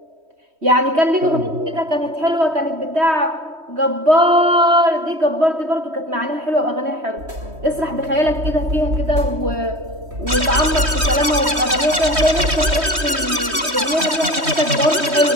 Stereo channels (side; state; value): left; late; 3.1 ms